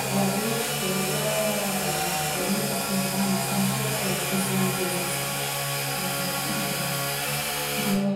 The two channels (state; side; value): identical; both; correlation 1.00